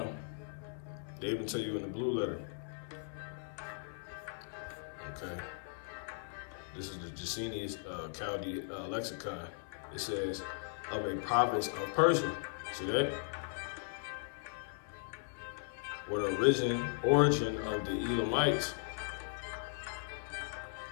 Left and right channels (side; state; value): right; silent; 53 dB below the other